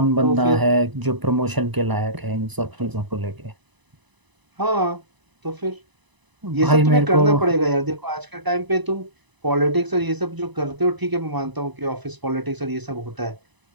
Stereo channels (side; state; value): left; late; 1.0 ms